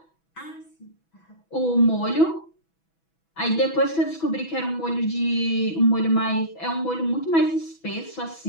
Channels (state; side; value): late; right; 6.1 ms